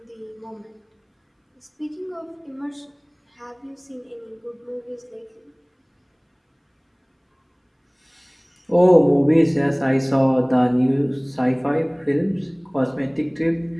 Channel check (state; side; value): identical; both; correlation 1.00